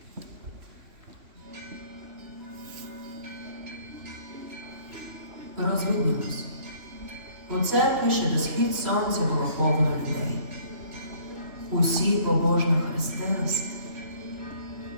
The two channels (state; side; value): late; left; 3.0 ms